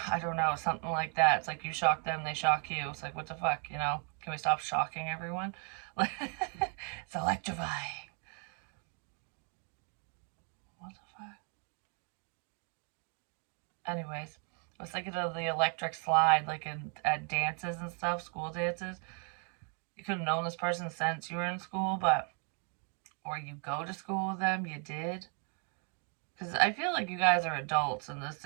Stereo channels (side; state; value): left; quieter; 39.9 dB